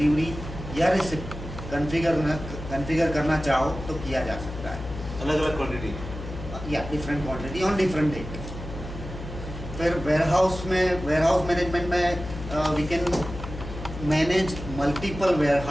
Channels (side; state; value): left; noise; hum, 10 dB below the sound